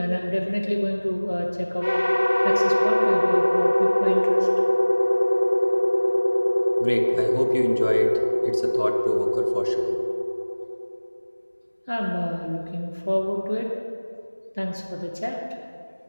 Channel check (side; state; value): both; inverted; correlation -1.00